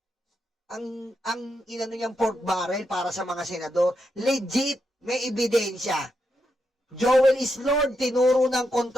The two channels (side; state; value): both; normal; correlation 0.83